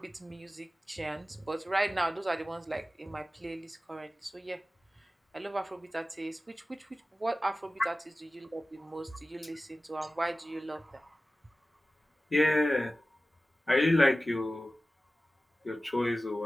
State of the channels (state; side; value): normal; both; correlation 0.96